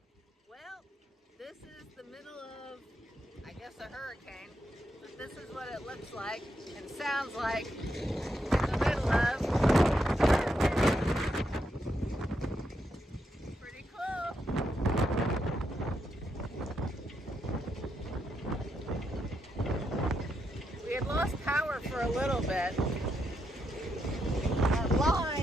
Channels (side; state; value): both; normal; correlation 0.81